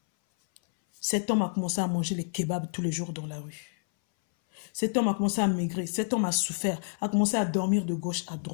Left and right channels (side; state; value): right; silent; 59 dB below the other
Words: Cet homme a commencé à manger les kebabs tous les jours dans la rue. Cet homme a commencé à maigrir, cet homme a souffert, a commencé à dormir de gauche à